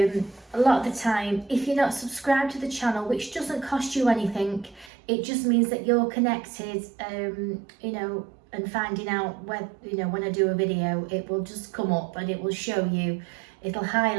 lot of the time, if you're not subscribed to the channel, which doesn't cost you anything, it just means that you're connected, you know, and finding out when, you know, when I do a video, it will just come up and it will show you, it'll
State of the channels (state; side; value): drops out; left; at 4.9 s